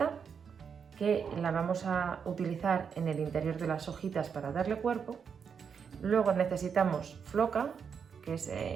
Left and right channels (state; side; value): quieter; left; 6.7 dB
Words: que la vamos a utilizar en el interior de las hojitas para darle cuerpo. Luego necesitamos floca, que es